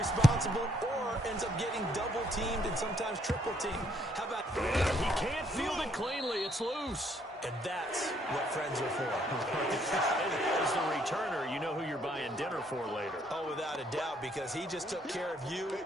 or ends up getting double-teamed and sometimes triple-teamed. How about... He can't field it cleanly. It's loose. And that's what friends are for. As the returner, you know who you're buying having dinner for later. Oh, without a doubt, because he just took care of you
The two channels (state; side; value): normal; both; correlation 0.69